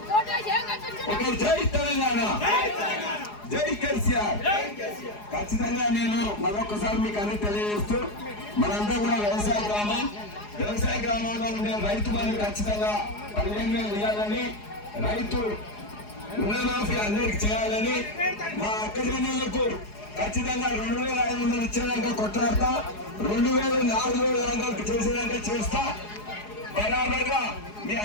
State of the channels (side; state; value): right; late; 4.8 ms